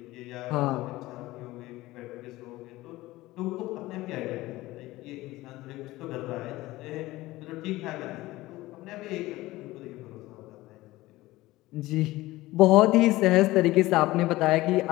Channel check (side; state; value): right; quieter; 18.3 dB